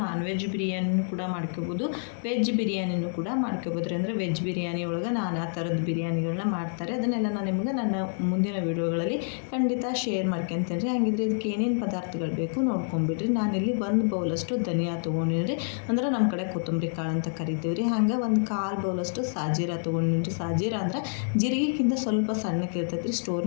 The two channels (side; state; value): right; silent; digital silence